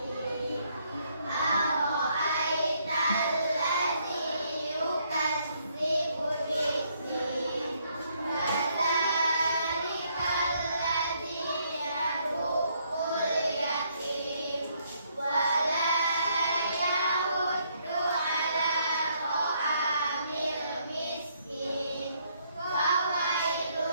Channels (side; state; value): both; inverted; correlation -0.71